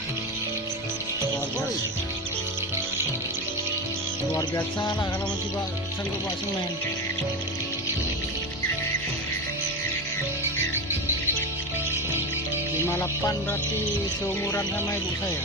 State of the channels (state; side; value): normal; both; correlation 0.19